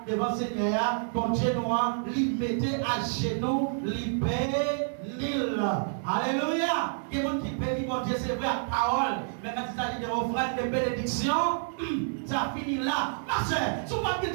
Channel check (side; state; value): left; silent; 59 dB below the other